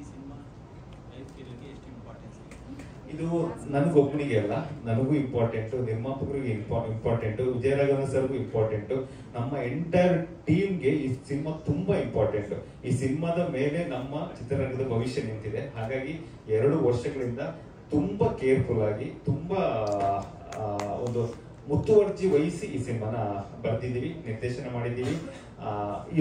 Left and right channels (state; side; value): identical; both; correlation 1.00